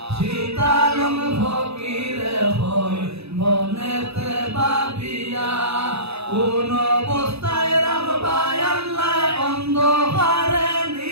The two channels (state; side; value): late; left; 0.79 ms